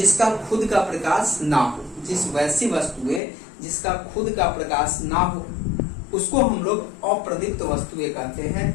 खुद का प्रकाश ना हो। जिस वैसी वस्तुएं जिसका खुद का प्रकाश ना हो उसको हम लोग अप्रदीप्त वस्तुएं कहते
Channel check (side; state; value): right; drops out; at 3.2 s